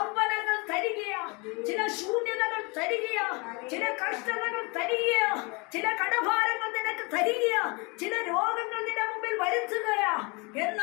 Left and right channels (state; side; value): quieter; right; 29.1 dB